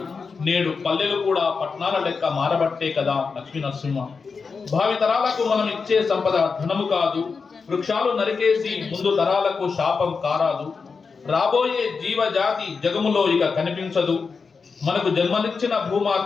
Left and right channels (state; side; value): quieter; right; 5.0 dB